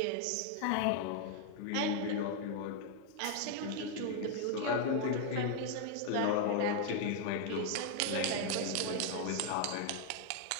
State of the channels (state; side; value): different; both; correlation 0.00